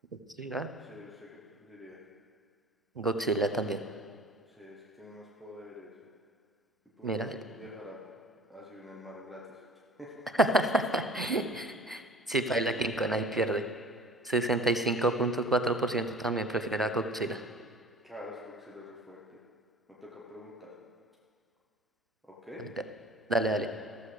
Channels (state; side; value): normal; both; correlation 0.45